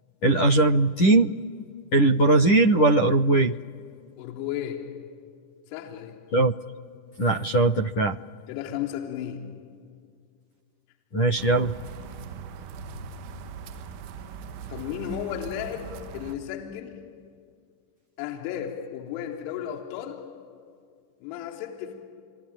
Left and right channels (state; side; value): late; right; 10 ms